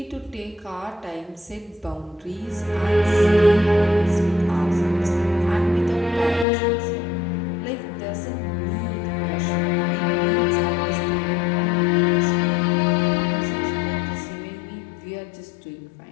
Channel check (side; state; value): right; drops out; at 6.5 s